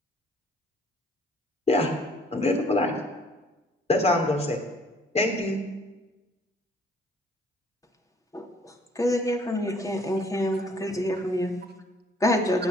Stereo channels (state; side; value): normal; both; correlation 0.60